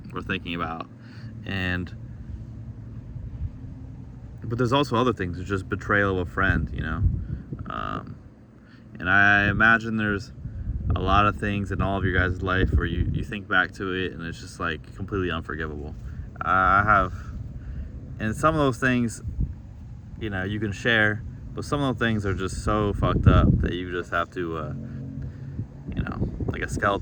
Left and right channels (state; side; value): identical; both; correlation 1.00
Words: we're thinking about, but there's also other things. It's just betrayal of a friend, and I imagine there's a lot of things in all of your guys' life where you think back to it and it's just like completely unforgivable. I have, and some of those things, you can share, but some of those things are just so fucked up that you just have to, like a